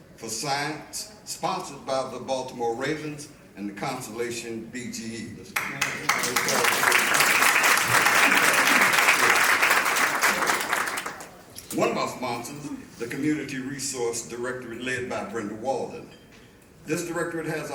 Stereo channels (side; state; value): both; identical; correlation 1.00